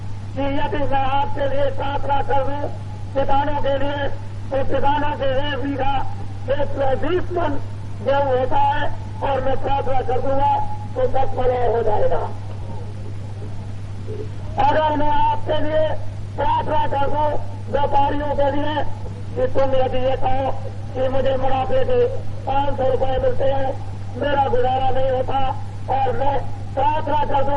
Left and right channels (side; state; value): both; identical; correlation 1.00